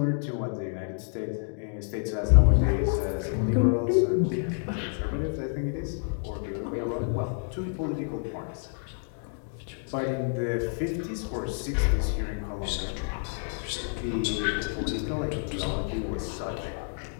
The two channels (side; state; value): right; silent; 59 dB below the other